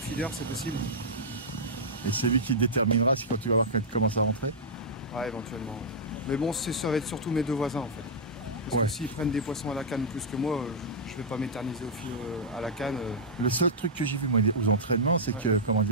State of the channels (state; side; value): normal; both; correlation -0.10